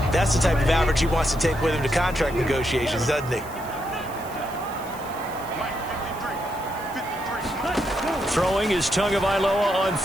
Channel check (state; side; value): noise; right; hiss, 19 dB below the sound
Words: that's the type of average he wants to take with him to contract negotiations, doesn't he? Throwing is Tagovailoa on